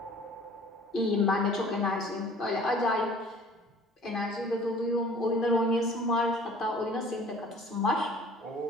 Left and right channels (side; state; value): both; normal; correlation 0.49